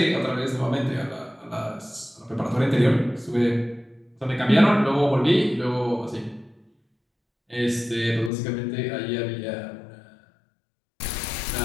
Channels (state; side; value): drops out; right; at 8.3 s